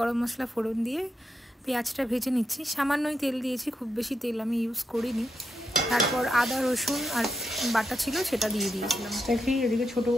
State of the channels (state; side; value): normal; both; correlation 0.84